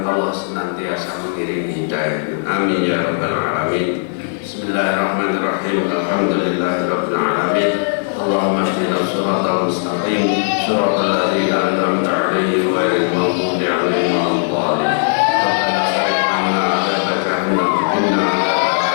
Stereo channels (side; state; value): right; silent; 60 dB below the other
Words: Allah senantiasa mengiringi hidayah. Amin ya rabbal alamin. Bismillahirrahmanirrahim. Alhamdulillahirabbil alamin. Allahumma ihdina shiratal mustaqim, shiratal ladzina an'amta 'alaihim ghairil maghdubi 'alaihim waladdallin. Rabbana srif 'anna 'adzaba jahannam inna